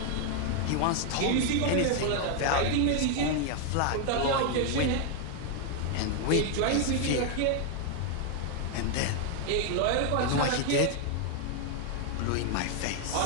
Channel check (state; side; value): different; both; correlation 0.00